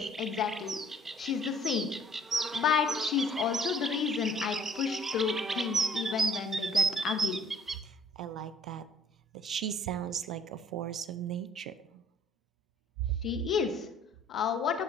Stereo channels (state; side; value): normal; both; correlation 0.58